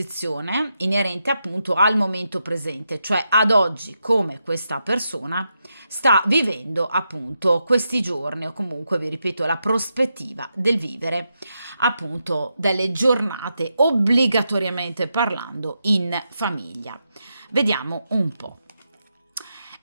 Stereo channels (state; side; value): inverted; both; correlation -0.85